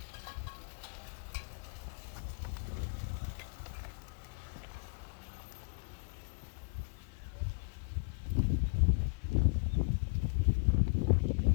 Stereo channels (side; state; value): right; quieter; 34.0 dB